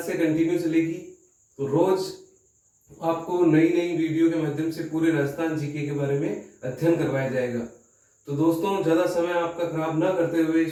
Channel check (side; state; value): both; identical; correlation 1.00